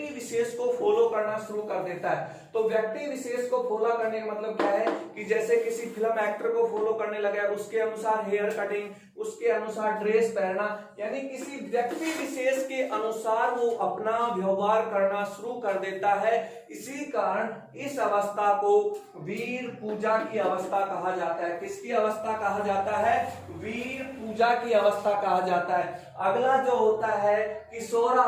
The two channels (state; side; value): identical; both; correlation 1.00